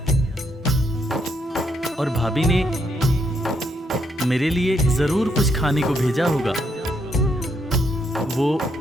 और भाभी ने मेरे लिए जरूर कुछ खाने को भेजा होगा। वो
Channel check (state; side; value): normal; both; correlation 0.76